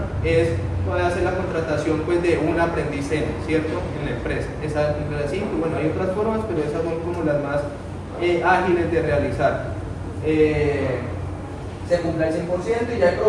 es puede hacer la contratación pues, de un aprendiz, ¿cierto? En la empresa. Esa cumple las 5, bueno, hay otras formas, pero esas son como las más ágiles de realizar. Se cumple el 100% y ya en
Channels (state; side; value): identical; both; correlation 1.00